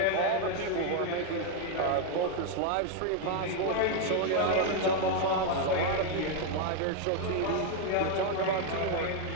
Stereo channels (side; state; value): both; different; correlation 0.00